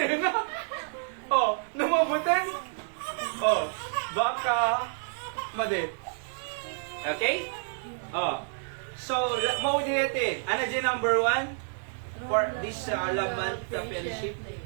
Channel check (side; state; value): left; silent; digital silence